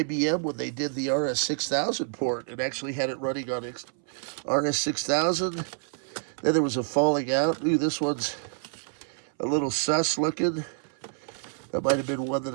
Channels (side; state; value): left; silent; 59 dB below the other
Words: when they did the RS-6000 port and actually had it running on RS-6000. Then there was a falling out. Ooh, this one's a little sus looking. That might have been one that